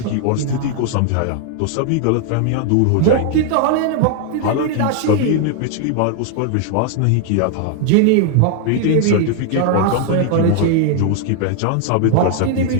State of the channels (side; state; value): both; different; correlation 0.00